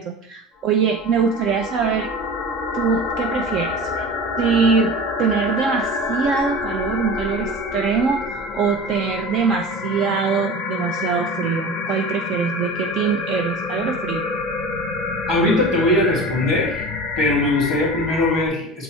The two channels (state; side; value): normal; both; correlation 0.35